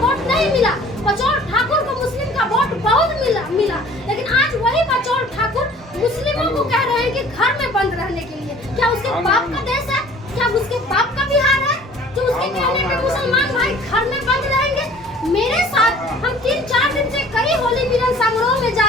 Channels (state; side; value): normal; both; correlation 0.50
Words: वोट नहीं मिला, बचौल ठाकुर को मुस्लिम का वोट बहुत मिला। लेकिन आज वही बचौल ठाकुर मुस्लिमों को कह रहे हैं कि घर में बंद रहने के लिए। क्या उसके बाप का देश है? क्या उसके बाप का बिहार है जो उसके कहने पे मुसलमान भाई घर में बंद रहेंगे? मेरे साथ हम 3-4 दिन से कई होली मिलन समारोह में